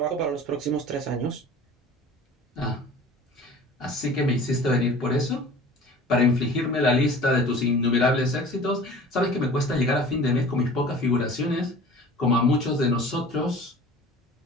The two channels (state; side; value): normal; both; correlation 0.43